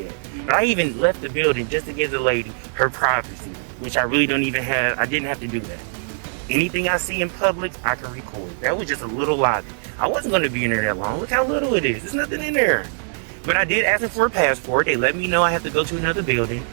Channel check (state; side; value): silent; left; digital silence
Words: But I even left the building just to give the lady her privacy, which I really don't even have. I didn't have to do that. Anything I see in public, I can record. That was just a little lobby. I wasn't going to be in there that long. Look how little it is. There's nothing in there. But I did ask them for a passport. They let me know I have to go to another building.